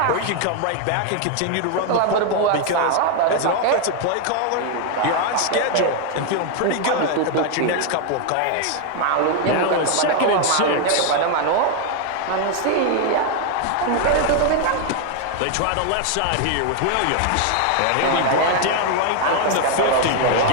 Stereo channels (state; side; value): different; both; correlation 0.00